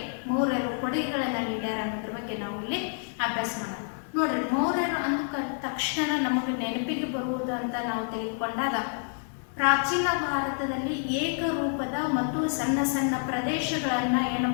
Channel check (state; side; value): silent; right; 58 dB below the other